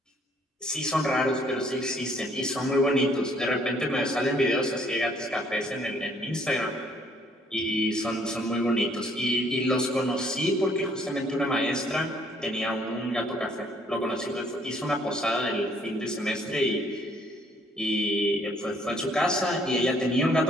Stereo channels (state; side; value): normal; both; correlation 0.64